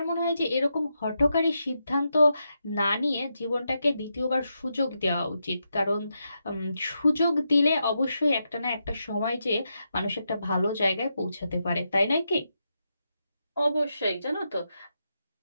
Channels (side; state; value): both; inverted; correlation -0.85